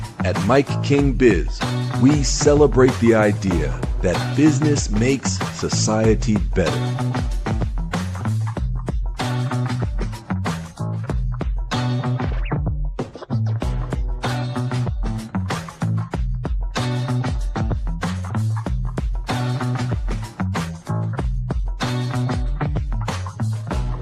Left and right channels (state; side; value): identical; both; correlation 1.00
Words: At MIKEKINGBIZ, we celebrate the idea that business makes society better.